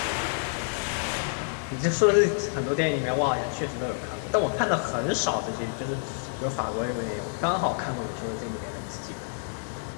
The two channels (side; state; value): right; silent; digital silence